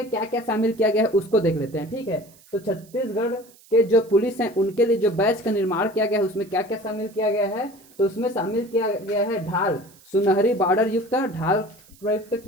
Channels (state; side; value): noise; right; hiss, 26 dB below the sound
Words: क्या क्या शामिल किया गया है उसको देख लेते हैं, ठीक है। तो छत्तीसगढ़ के जो पुलिस हैं उनके लिए जो बैच का निर्माण किया गया है उसमें क्या क्या शामिल किया गया है, तो उसमें शामिल किया गया है ढाल, सुनहरी बॉर्डर युक्त ढाल प्रयुक्त